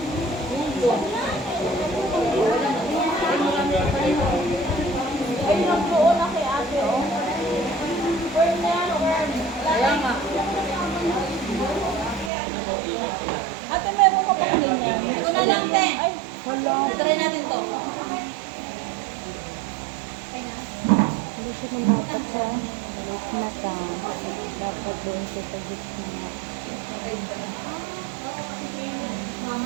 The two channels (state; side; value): drops out; left; at 12.3 s